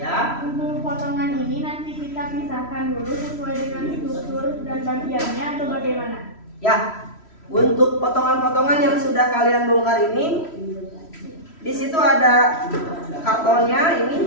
Untuk potongan ini nanti kita pisahkan dulu sesuai dengan struktur dan bagiannya atau bagaimana? Ya. Untuk potongan-potongan yang sudah kalian bongkar ini, di situ ada kartonnya,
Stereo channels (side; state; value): right; late; 3.1 ms